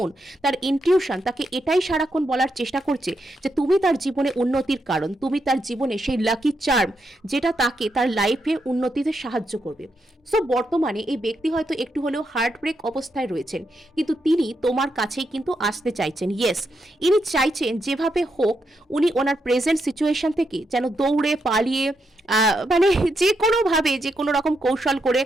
তার ইনটিউশন তাকে এটাই সারাক্ষণ বলার চেষ্টা করছে যে তুমি তার জীবনে উন্নতির কারণ, তুমি তার জীবনে সেই লাকি চার্ম যেটা তাকে তার লাইফে উন্নতিতে সাহায্য করবে। সো বর্তমানে এই ব্যক্তি হয়তো একটু হলেও হার্ট ব্রেক অবস্থায় রয়েছেন, কিন্তু তিনি তোমার কাছেই কিন্তু আসতে চাইছেন। ইয়েস, ইনি চাইছেন যেভাবে হোক উনি ওনার প্রেজেন্ট সিচুয়েশন থেকে যেন দৌড়ে পালিয়ে মানে যে কোনোভাবে যে কোনো রকম কৌশল করে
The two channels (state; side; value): normal; both; correlation 0.82